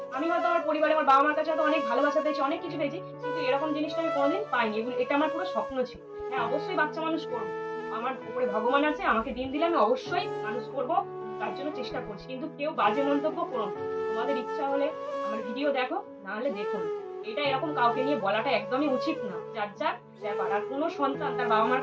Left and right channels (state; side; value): identical; both; correlation 1.00